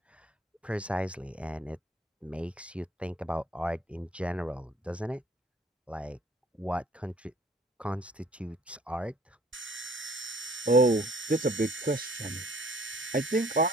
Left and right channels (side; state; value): both; normal; correlation 0.57